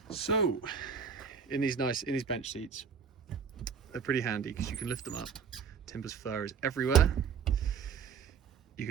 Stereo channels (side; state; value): left; quieter; 6.6 dB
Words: So in these bench seats, they're pretty handy because you can lift them up. Timber's fur is everywhere. You